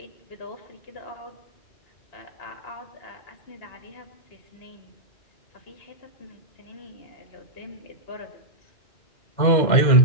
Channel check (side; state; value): right; late; 2.1 ms